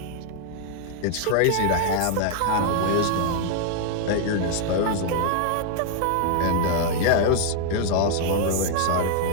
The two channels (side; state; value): both; different; correlation 0.00